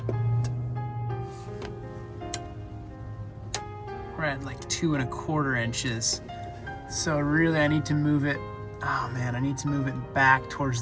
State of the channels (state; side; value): identical; both; correlation 1.00